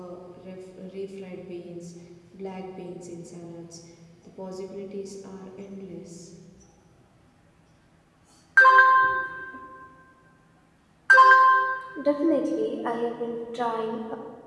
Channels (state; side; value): identical; both; correlation 1.00